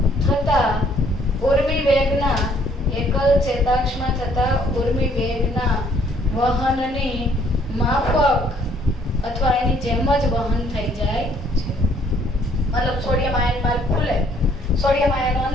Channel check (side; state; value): both; normal; correlation 0.63